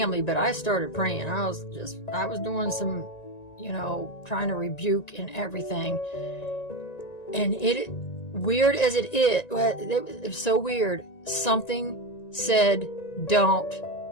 but I started praying. I was doing some, you know, trying to rebuke and everything. And weird as it was so weird. Something said, don't,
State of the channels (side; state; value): right; late; 1.9 ms